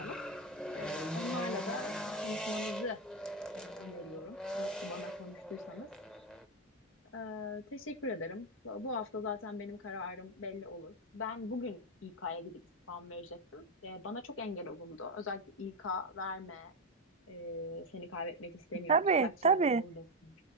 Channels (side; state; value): both; normal; correlation 0.09